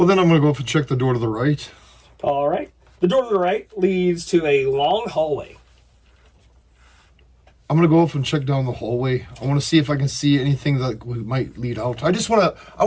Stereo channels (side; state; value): both; identical; correlation 1.00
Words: then I'm going to go up and check the door to the right. All right. The door to the right leads to a long hallway. I'm going to go up and check down the hallway. I want to see if I can see anything that might lead out. I